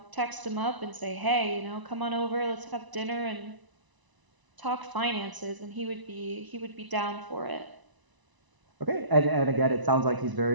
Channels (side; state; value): left; late; 1.0 ms